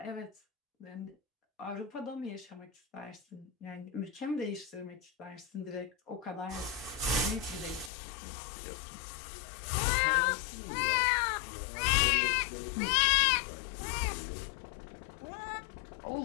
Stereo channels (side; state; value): right; drops out; at 7.9 s